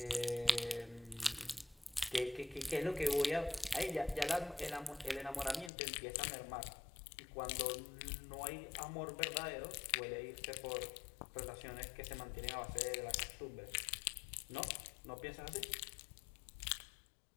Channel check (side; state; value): right; drops out; at 5.7 s